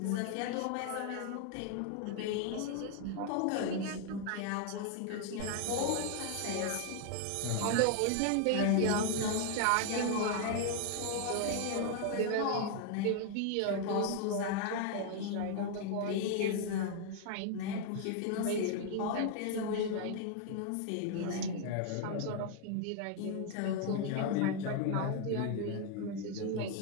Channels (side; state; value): both; different; correlation 0.00